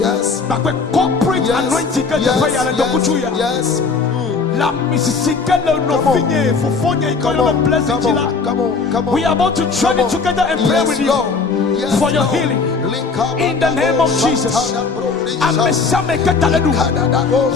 Corporate anointing que tu fais à l'endroit. Yes. La Mississippi no finye for fonya ikono blessing chila. Come on. We are about to journey together and pray with you for your healing. In the name of Jesus. Amesame kataledu.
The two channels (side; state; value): right; quieter; 4.6 dB